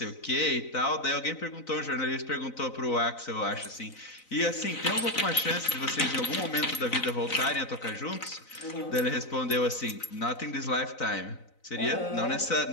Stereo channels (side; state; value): right; late; 4.0 ms